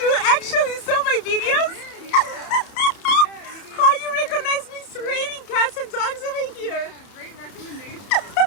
actually saw my videos? How you recognize me? It's raining cats and dogs over here. Yeah, great recommendation.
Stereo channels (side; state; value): right; late; 31 ms